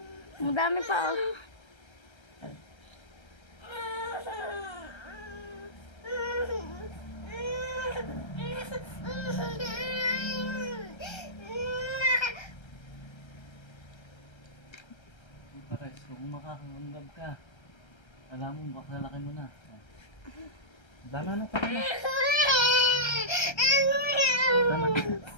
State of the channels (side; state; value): right; late; 1.3 ms